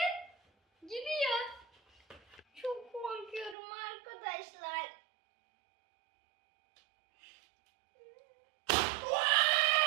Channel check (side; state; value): left; drops out; at 3.6 s